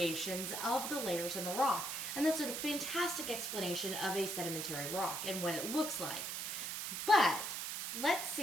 of the layers in the rock. And that's a fantastic explanation of a sedimentary rock and what it looks like. But let's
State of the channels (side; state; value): right; noise; hiss, 4 dB below the sound